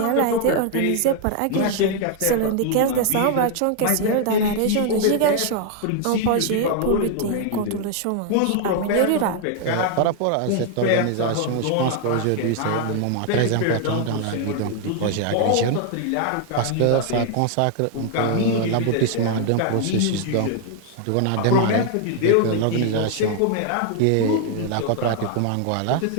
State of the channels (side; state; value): both; different; correlation 0.00